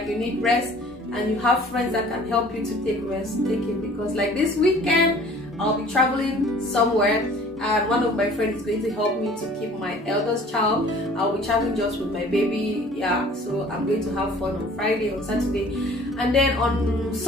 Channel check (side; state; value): both; normal; correlation 0.50